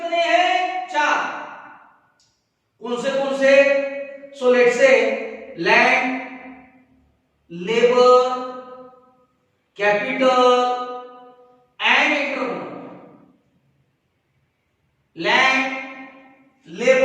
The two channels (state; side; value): identical; both; correlation 1.00